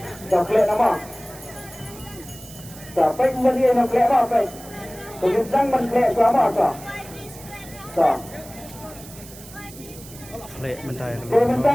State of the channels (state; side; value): noise; right; hiss, 17 dB below the sound